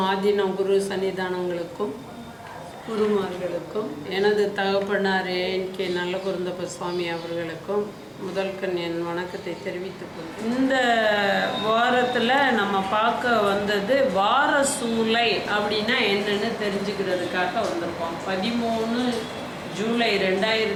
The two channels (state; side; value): identical; both; correlation 1.00